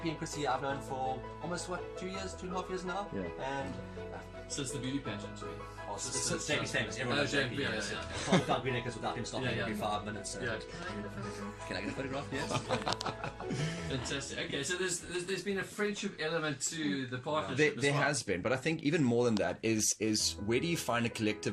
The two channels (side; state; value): both; identical; correlation 1.00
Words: and Chrissy, I've known for almost 2.5 years now. Yeah. And since the beauty pageant, since JP's famous. Everyone knows JP. Can't without Green Acres without him stopping every 5 minutes. So. Can I get a photograph? Yes. Fantastic. Okay, so there's been a friendship element to the partnership. There has been, but I think even more than that is where do you find a